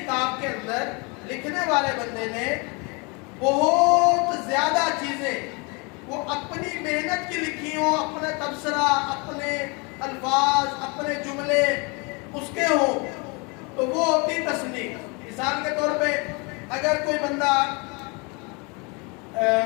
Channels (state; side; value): quieter; right; 30.4 dB